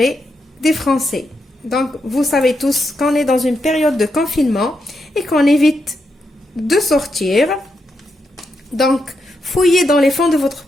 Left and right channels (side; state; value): both; normal; correlation 0.83